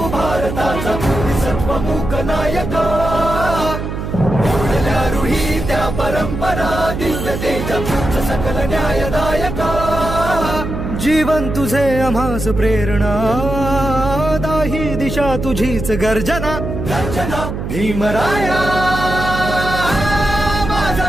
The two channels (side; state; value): right; noise; hum, 5 dB below the sound